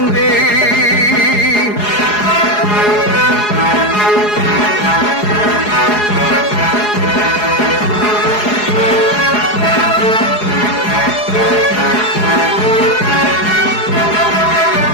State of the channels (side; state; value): right; late; 4.8 ms